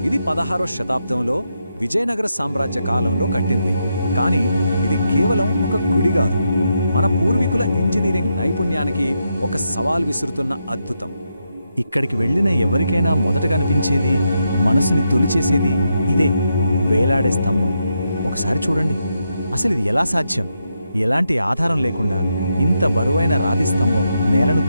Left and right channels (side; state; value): both; inverted; correlation -0.83